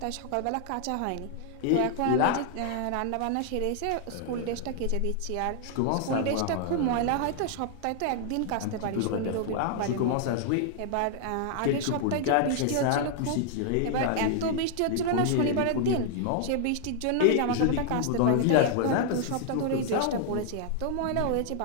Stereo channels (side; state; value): both; different; correlation 0.00